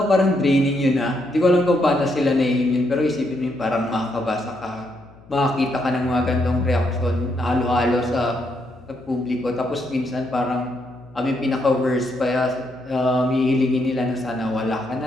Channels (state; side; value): noise; left; hum, 24 dB below the sound